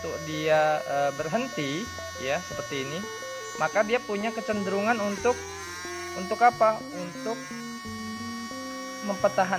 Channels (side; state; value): both; identical; correlation 1.00